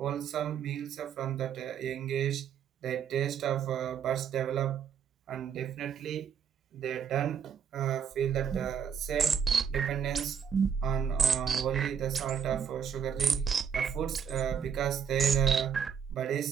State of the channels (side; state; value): left; quieter; 7.6 dB